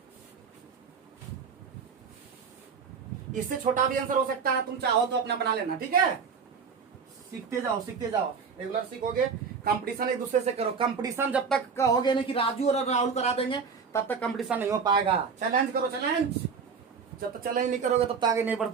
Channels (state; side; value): quieter; left; 5.9 dB